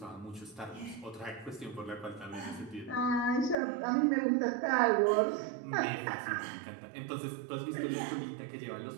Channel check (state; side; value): drops out; left; at 3.6 s